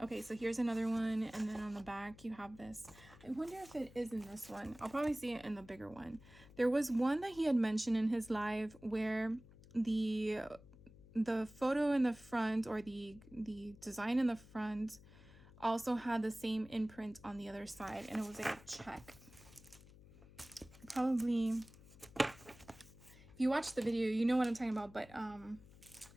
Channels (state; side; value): noise; left; hum, 21 dB below the sound